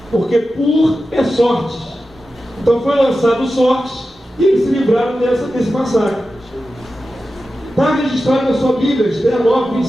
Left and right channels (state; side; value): normal; both; correlation 0.92